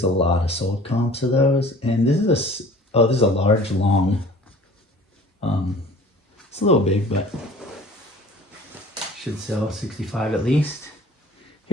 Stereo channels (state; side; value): normal; both; correlation 0.47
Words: a lot of sold comps of those. And this is a large, long. It's a little big, but should sell 65 at least.